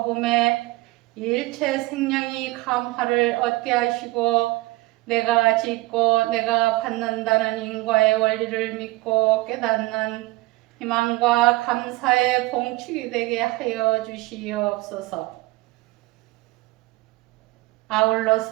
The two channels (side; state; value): left; quieter; 20.7 dB